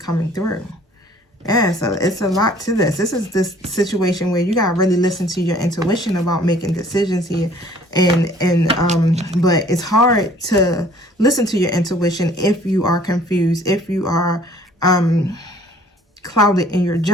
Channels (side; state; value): both; normal; correlation 0.55